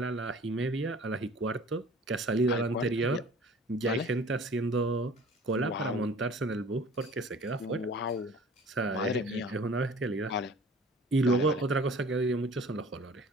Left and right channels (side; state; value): both; normal; correlation 0.47